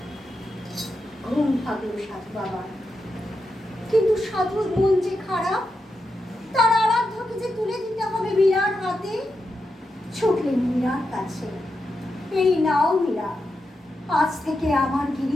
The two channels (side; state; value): both; normal; correlation 0.87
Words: ঘুম ভাগল সাধু বাবা। কিন্তু সাধুর মন যে খারাপ, তার আরাধ্যকে যে তুলে দিতে হবে মীরার হাতে। ছুটলেন মীরার কাছে, এই নাও মীরা, আজ থেকে আমার